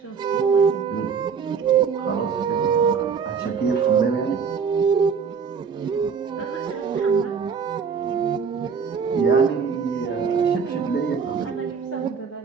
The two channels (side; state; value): left; quieter; 6.1 dB